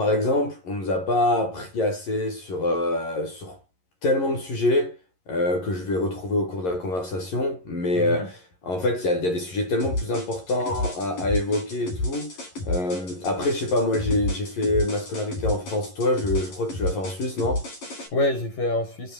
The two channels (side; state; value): right; late; 11 ms